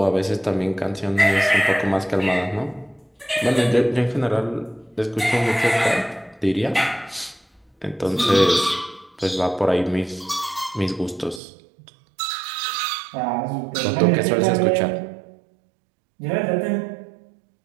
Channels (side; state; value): left; drops out; at 11.4 s